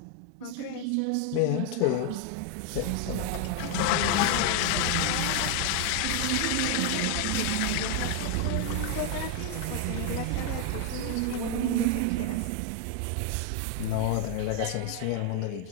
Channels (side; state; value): both; different; correlation 0.00